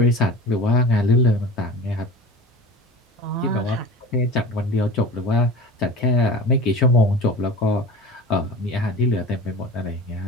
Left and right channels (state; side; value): normal; both; correlation 0.36